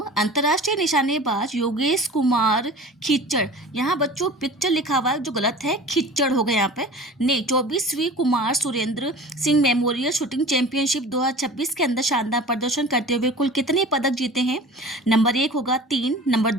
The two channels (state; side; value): normal; both; correlation 0.40